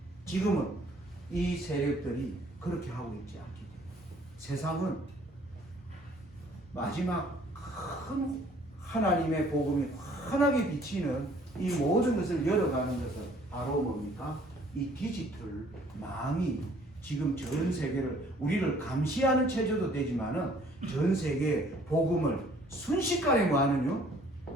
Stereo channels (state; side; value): normal; both; correlation 0.58